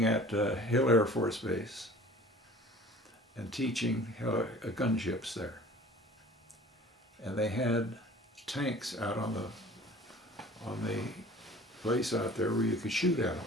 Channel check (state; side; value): normal; both; correlation 0.46